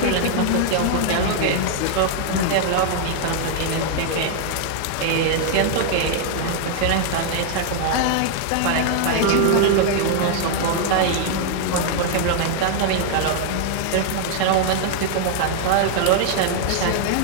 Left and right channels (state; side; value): different; both; correlation 0.00